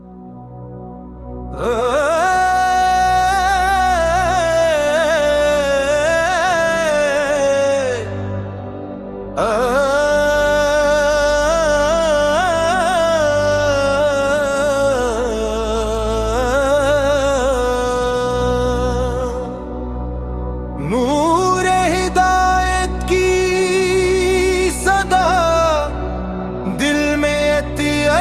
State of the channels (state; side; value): identical; both; correlation 1.00